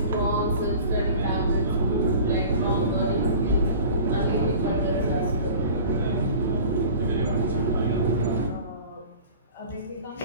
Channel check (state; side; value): inverted; both; correlation -0.42